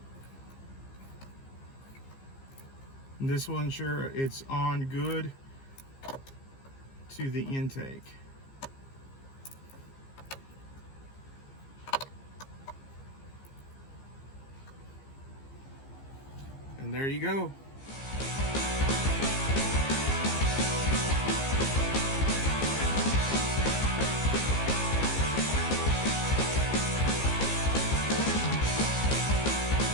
And this will ensure it's on good to the intake. And there you go.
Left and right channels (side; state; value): right; late; 15 ms